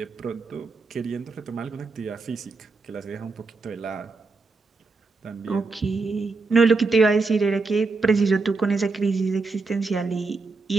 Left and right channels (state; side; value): quieter; left; 4.0 dB